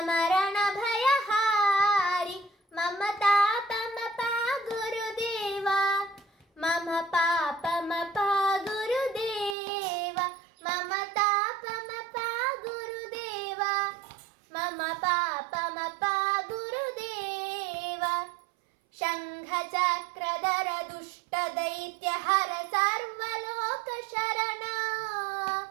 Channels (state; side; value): drops out; left; at 9.6 s